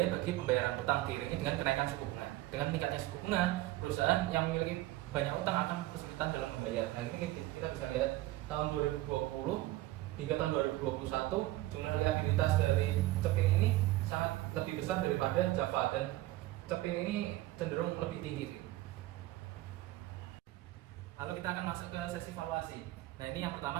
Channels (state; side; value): quieter; left; 17.1 dB